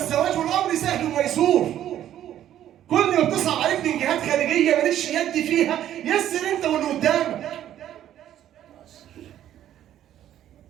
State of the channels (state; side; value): quieter; left; 11.5 dB